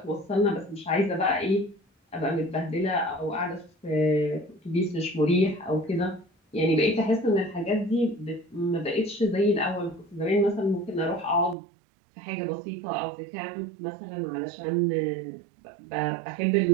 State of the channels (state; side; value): drops out; left; at 11.6 s